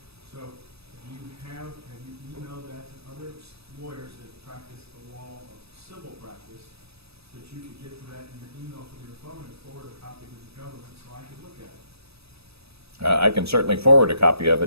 So have you emailed that to other lawyers that practice the law of civil practice that you could get to that in your email from your phone and forward a copy to the government so I could look at it? I can certainly forward a copy of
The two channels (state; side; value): late; left; 0.78 ms